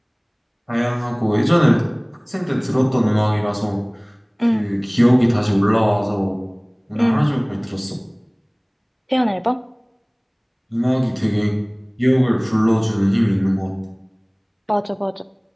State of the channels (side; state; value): both; identical; correlation 1.00